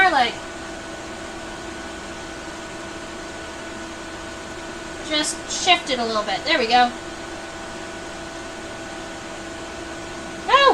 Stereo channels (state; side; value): identical; both; correlation 1.00